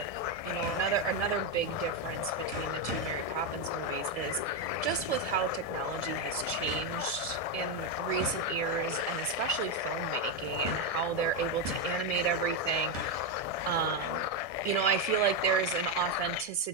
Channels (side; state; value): right; late; 1.6 ms